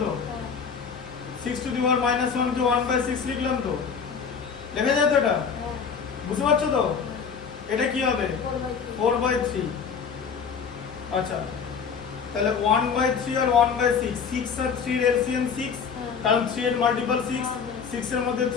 তো। 6 to the power -1 কে 1/6 লিখলাম তো, লেখা যায় তো এটা? বুঝতে পারছো তো? এটা কি হবে? 4/3। আচ্ছা তাহলে 1/3 আর 1/6, 6 আর 3 এর এলসিএম 6, কারণ 3 এর মাল্টিপল 6, 6 এর মধ্যে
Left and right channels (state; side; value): quieter; right; 6.3 dB